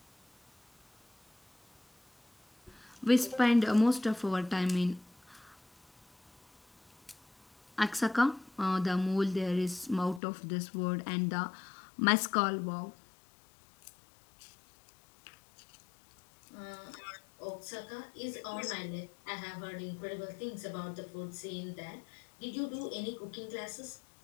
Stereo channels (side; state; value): right; drops out; at 10.2 s